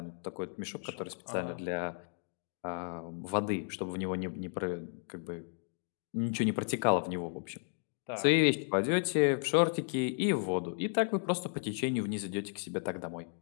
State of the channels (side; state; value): right; silent; 55 dB below the other